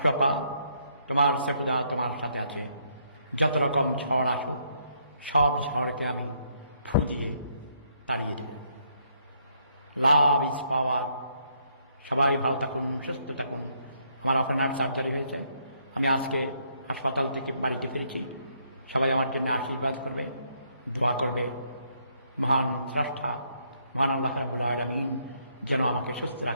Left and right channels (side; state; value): both; inverted; correlation -0.71